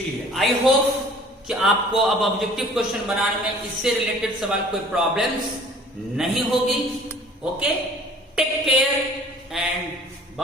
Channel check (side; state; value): both; normal; correlation 0.50